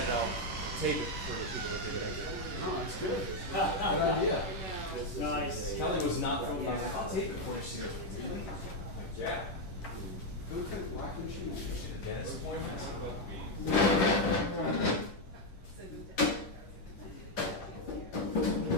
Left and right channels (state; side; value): late; right; 11 ms